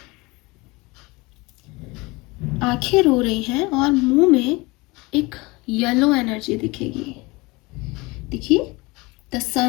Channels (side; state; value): right; quieter; 24.1 dB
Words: आंखें रो रही हैं और मुंह में एक येलो एनर्जी दिखेगी। देखिए, द